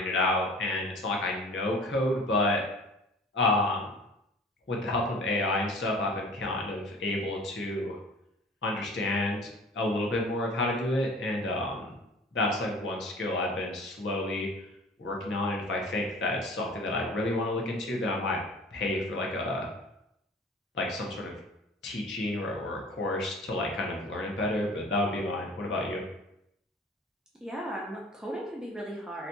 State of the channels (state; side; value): normal; both; correlation 0.45